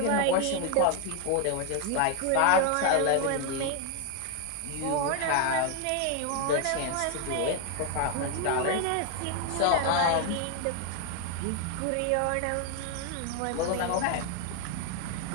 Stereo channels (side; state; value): both; different; correlation 0.01